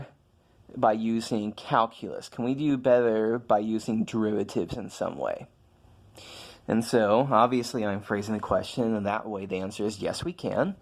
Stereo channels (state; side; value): identical; both; correlation 1.00